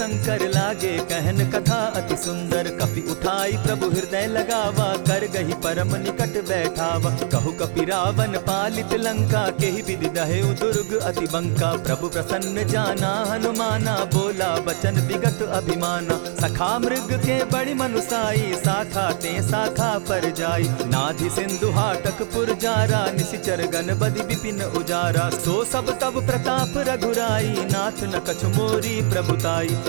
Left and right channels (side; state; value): left; silent; digital silence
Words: लागे कहन कथा अति सुंदर। कपि उठाई प्रभु हृदय लगावा, कर गही परम निकट बैठावा। कहु कपि रावण पालित लंका, केहि विधि दहेउ दुर्ग अति बंका। प्रभु प्रसन्न जाना हनुमाना, बोला बचन विगत अभिमाना। सखा मृग के बड़ी मनुसाई, साखा ते शाखा पर जाई। नाधि सिंधु हाटक पुर जारा, निशिचर गण बदि विपिन उजारा। सो सब तब प्रताप रघुराई, नाथ न कछु मोरी प्रभुताई।